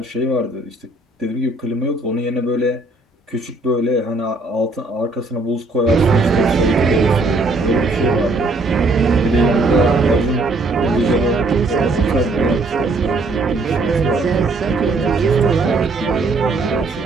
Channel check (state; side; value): quieter; left; 3.1 dB